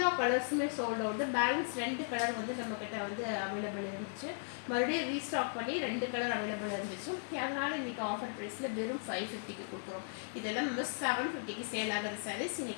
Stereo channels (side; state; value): right; silent; digital silence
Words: கலர்ஸுமே சோல்ட் அவுட். பேலன்ஸ் 2 கலர் வந்து நம்மக்கிட்ட வந்து அவைலபிள் இருந்துச்சு. மறுபடியும் ரீஸ்டாக் பண்ணி 2 கலர் அவைலபிள் இருந்துச்சு. அதனால் இன்றைக்கி ஆஃபர் ப்ரைஸில் வெறும் 550க்கு கொடுக்குறோம். இதெல்லாம் நம்ம 750க்கு சேல் ஆகிற சாரீஸ்